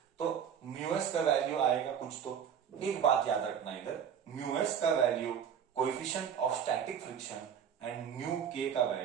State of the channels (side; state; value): left; quieter; 8.2 dB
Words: तो mu s का वैल्यू आएगा कुछ, तो एक बात याद रखना इधर, म्यूएस का value coefficient of static friction and mu के का